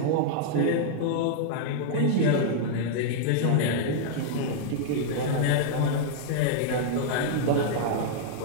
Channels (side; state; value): both; different; correlation -0.01